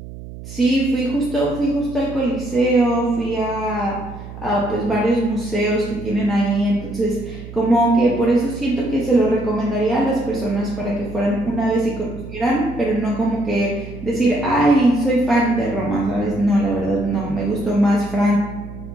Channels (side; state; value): right; noise; hum, 13 dB below the sound